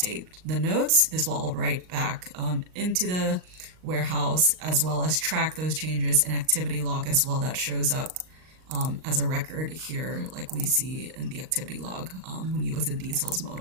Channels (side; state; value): left; late; 38 ms